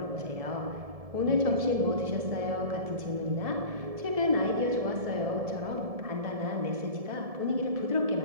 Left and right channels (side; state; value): left; late; 1.7 ms